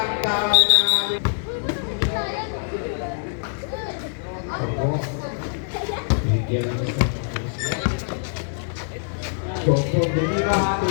tao namin. Ako. Bigyan ng isa. Doko, Dilima.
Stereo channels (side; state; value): right; silent; digital silence